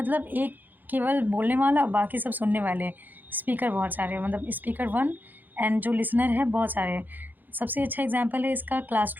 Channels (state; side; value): late; left; 0.086 ms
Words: एक केवल बोलने वाला, बाकी सब सुनने वाले, स्पीकर बहुत सारे, मतलब स्पीकर वन एंड जो लिसनर है बहुत सारे। सबसे अच्छा एग्जांपल है इसका